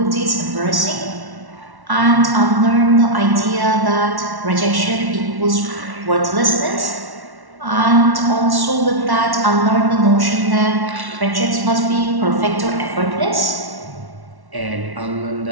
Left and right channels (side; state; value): left; late; 1.1 ms